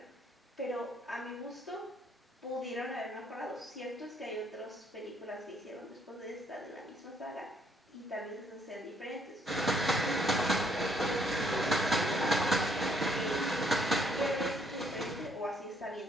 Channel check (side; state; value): both; normal; correlation 0.68